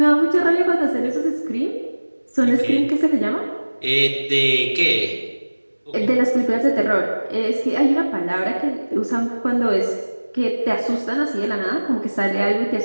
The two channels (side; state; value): both; inverted; correlation -1.00